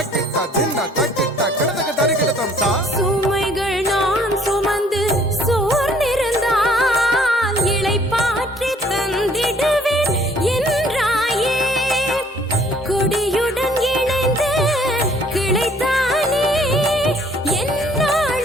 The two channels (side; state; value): both; normal; correlation 0.59